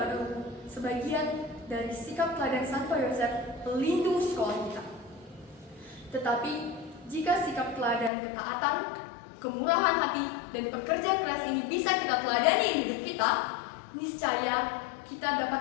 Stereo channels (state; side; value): drops out; right; at 8.1 s